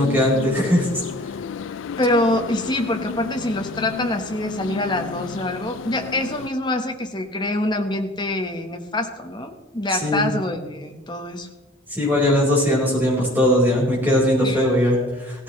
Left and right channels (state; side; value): normal; both; correlation 0.48